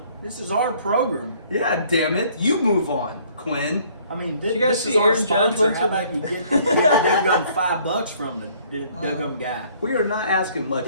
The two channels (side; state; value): both; inverted; correlation -0.60